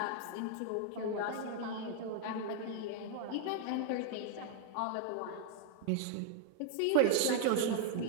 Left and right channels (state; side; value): different; both; correlation 0.00